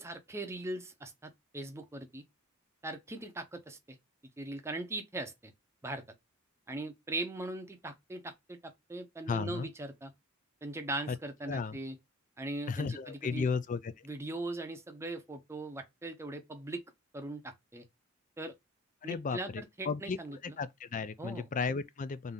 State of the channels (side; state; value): both; normal; correlation 0.44